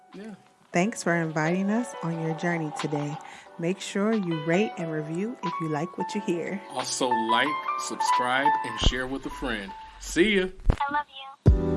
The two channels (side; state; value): both; identical; correlation 1.00